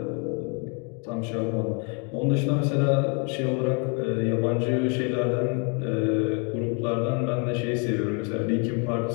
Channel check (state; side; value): quieter; right; 36.9 dB